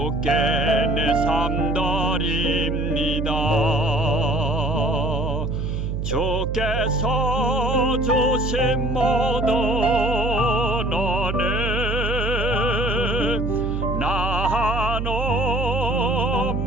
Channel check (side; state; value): right; noise; hum, 2 dB below the sound